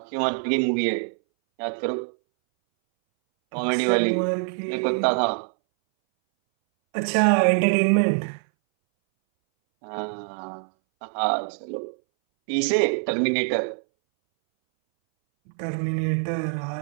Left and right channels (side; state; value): left; silent; 60 dB below the other